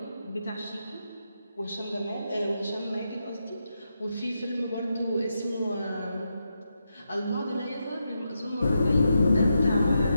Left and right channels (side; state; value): both; inverted; correlation -0.85